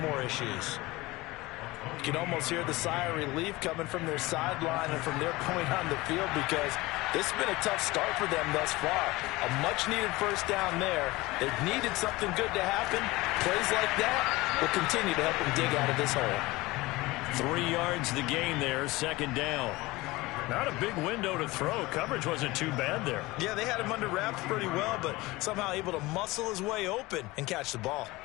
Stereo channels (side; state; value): right; quieter; 20.8 dB